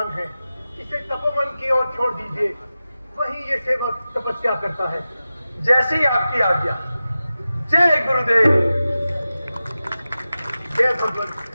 हैं, इसे तपोवन की ओर छोड़ दीजिए। वहीं ये सेवक तपस्या करता है। जैसे ही आपकी आज्ञा। जय गुरुदेव। जय भगवान,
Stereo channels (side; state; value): both; inverted; correlation -0.94